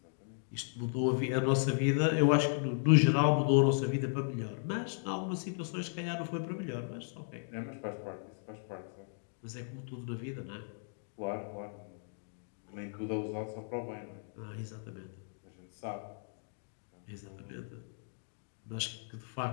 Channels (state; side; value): silent; right; digital silence